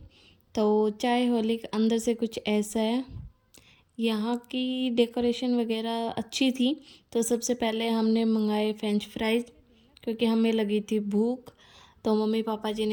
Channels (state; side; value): identical; both; correlation 1.00